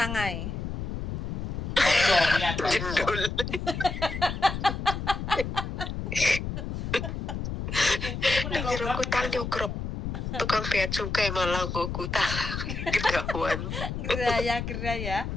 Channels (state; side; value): noise; left; rumble, 4 dB below the sound